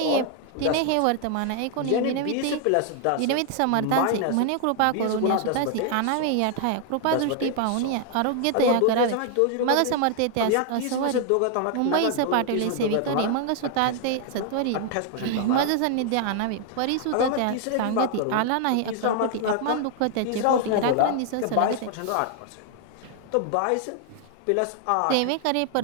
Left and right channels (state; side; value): different; both; correlation 0.00